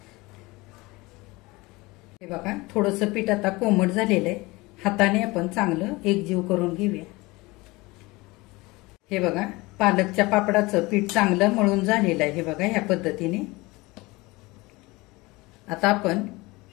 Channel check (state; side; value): quieter; right; 22.6 dB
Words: हे बघा, थोडंसं पीठ आता कोमट झालेलं आहे. हाताने आपण चांगलं एकजीव करून घेऊया. हे बघा, पालकच्या पापडाचं पीठ चांगलं मळून झालेलं आहे. हे बघा, ह्या पद्धतीने. आता आपण